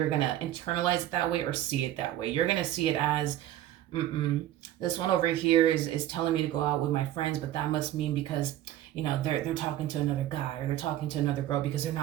going to internalize it that way or see it that way. You're going to see it as, this one over here is telling me to go out with my friends, but that must mean because, you know, they're talking to another guy or they're talking to another girl because they're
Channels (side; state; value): left; quieter; 13.1 dB